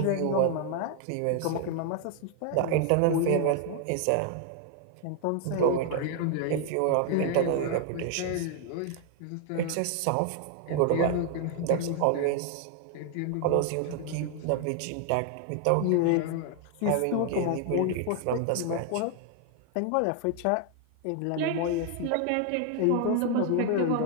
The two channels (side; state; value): both; different; correlation 0.00